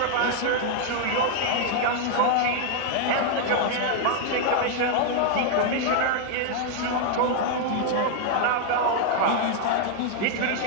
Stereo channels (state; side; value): different; both; correlation 0.00